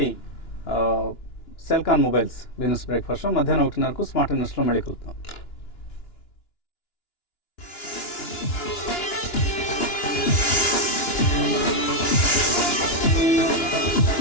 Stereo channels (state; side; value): late; right; 2.9 ms